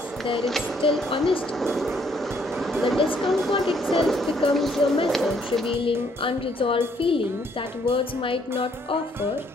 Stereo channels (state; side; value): normal; both; correlation 0.67